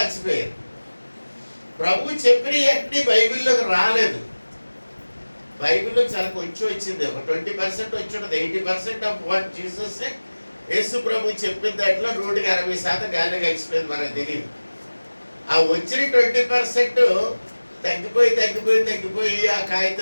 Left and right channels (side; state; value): both; inverted; correlation -1.00